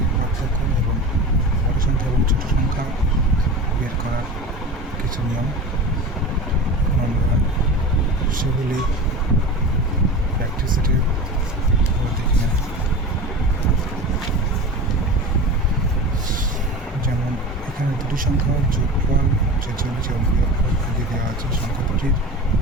পার্থক্য এবং বড় সংখ্যা এবং ছোটো সংখ্যা বের করার কিছু নিয়ম। আমরা সেগুলি প্র্যাকটিস সেটে দেখে নেব। যেমন এখানে দুটি সংখ্যার যোগফল 46 এবং বিয়োগফল দিয়ে দেওয়া আছে, সংখ্যা দুটির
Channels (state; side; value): normal; both; correlation 0.31